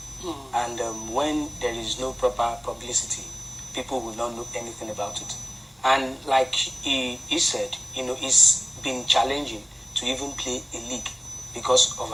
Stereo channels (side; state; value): both; identical; correlation 1.00